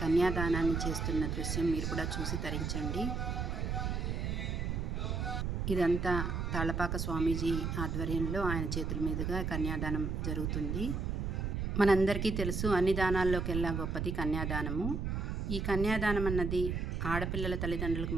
కన్యాదానాన్ని చేస్తున్న దృశ్యం మీరు కూడా చూసి తరించండి. ఇదంతా తాళ్లపాక స్వామీజీ ఆధ్వర్యంలో ఆయన చేతుల మీదుగా కన్యాదానం జరుగుతుంది. మనందరికీ తెలుసు, అన్ని దానాల్లోకెల్లా గొప్పది కన్యాదానము. ఈ కన్యాదానం అన్నది ఆడపిల్లల తల్లిదండ్రులకు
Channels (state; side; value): noise; right; rumble, 1 dB below the sound